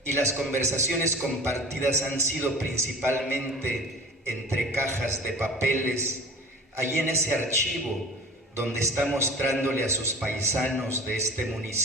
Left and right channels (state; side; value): normal; both; correlation 0.40